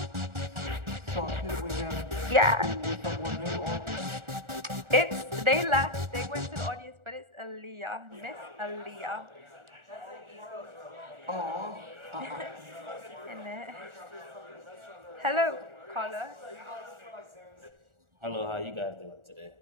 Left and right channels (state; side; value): late; left; 1.4 ms